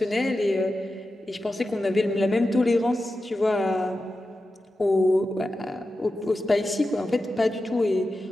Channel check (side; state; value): both; normal; correlation 0.91